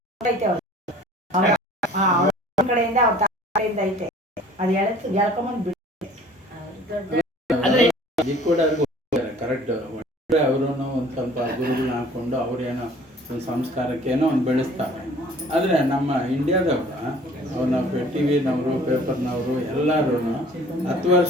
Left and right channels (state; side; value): normal; both; correlation 0.50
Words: ಐತೆ ಅವ್ರ ಕಡೆಯಿಂದ ಅವ್ರ ಕಡೆಯಿಂದ ಐತೆ, ಅದು ಎಳ್ಕೊಂಬಂದ್ ಬಿಡ್ತೆ. ಈ ಕೂಡ ಕರೆಕ್ಟ್. ಅವರು ಒಂದು ಸ್ವಲ್ಪ ಗುರುಗಳನ್ನ ಹಾಕೊಂಡು ಅವ್ರೇನೋ ಒಂದು ಸಂಸ್ಕಾರಕ್ಕೇನೋ ಒಂದು ಬೆಳೆಸ್ತಾರೆ. ಆದರೆ ನಮ್ಮ ಇಂಡಿಯಾದವ್ರು ಅವ್ರನ್ನ ಟಿ ವಿನವರು ಪೇಪರ್ನವರು ಎಲ್ಲರೂ 10